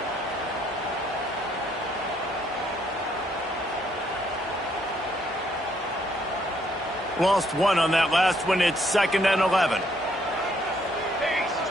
Lost one on that last one. It's 2nd and 11.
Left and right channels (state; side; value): normal; both; correlation 0.69